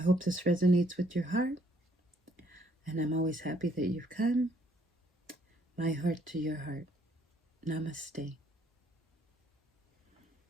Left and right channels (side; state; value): both; normal; correlation 0.67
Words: this resonates with your heart, and I'm always happy that you've come. My heart to your heart. Namaste.